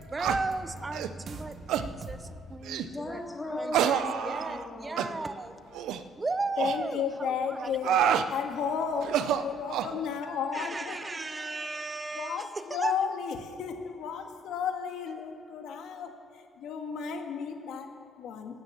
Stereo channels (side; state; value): both; normal; correlation 0.60